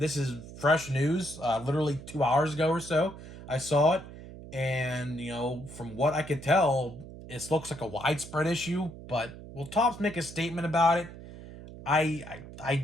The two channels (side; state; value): right; noise; hum, 15 dB below the sound